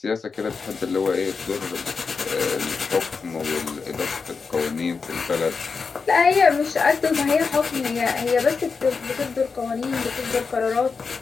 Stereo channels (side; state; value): right; quieter; 5.0 dB